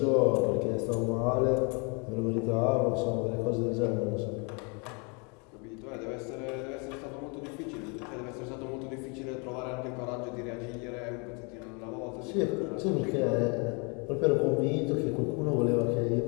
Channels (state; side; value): quieter; right; 33.4 dB